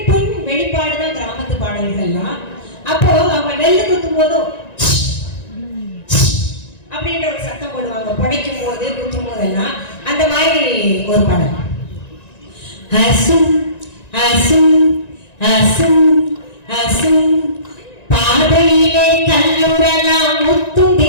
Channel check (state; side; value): late; right; 1.9 ms